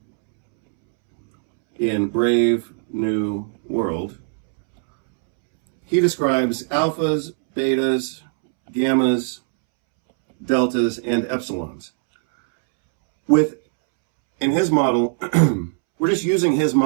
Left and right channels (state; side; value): silent; left; 66 dB below the other